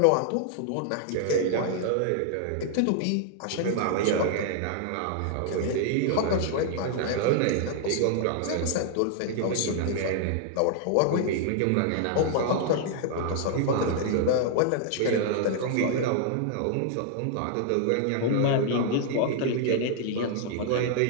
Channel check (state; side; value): different; both; correlation -0.01